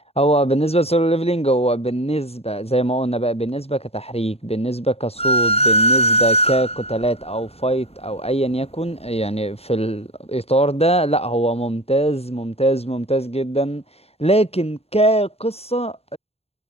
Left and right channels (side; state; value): right; late; 0.29 ms